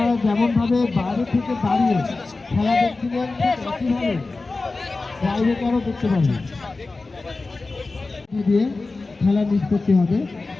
যেমনভাবে বাইরে থেকে দাঁড়িয়ে খেলা দেখছিলেন একইভাবে বাইরেটারও দেখতে পাবেন দিয়ে খেলা নিষ্পত্তি হবে।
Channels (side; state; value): right; quieter; 3.6 dB